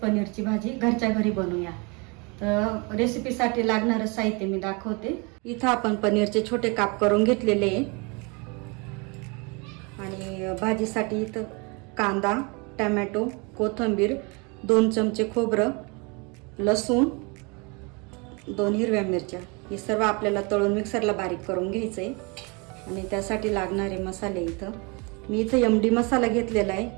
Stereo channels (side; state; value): left; quieter; 30.3 dB